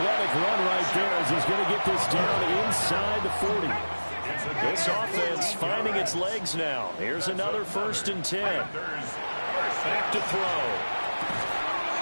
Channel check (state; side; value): inverted; both; correlation -1.00